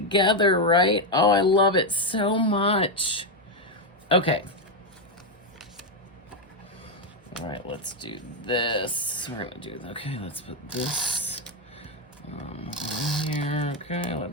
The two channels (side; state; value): both; normal; correlation 0.04